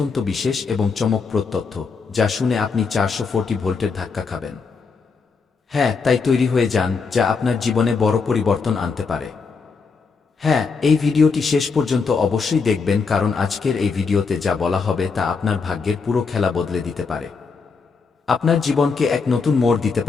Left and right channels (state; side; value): quieter; right; 5.0 dB